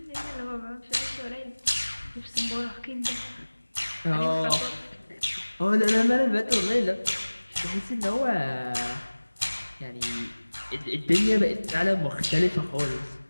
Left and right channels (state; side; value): inverted; both; correlation -1.00